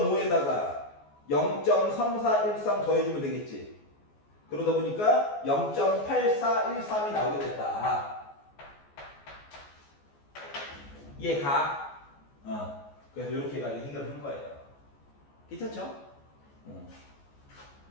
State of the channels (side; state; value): right; late; 14 ms